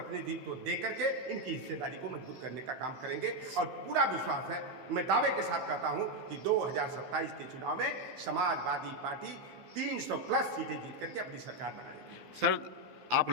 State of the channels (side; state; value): left; late; 15 ms